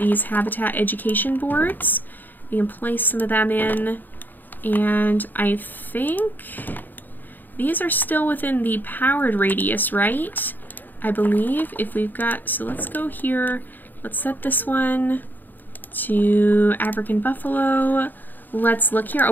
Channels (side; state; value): right; late; 0.089 ms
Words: habitat education boards. We can place some of them in. And I think these are still within the powered radius, right? I believe if we've got, so let's go here. Let's set this one to African buffalo. Let's look here. Oh,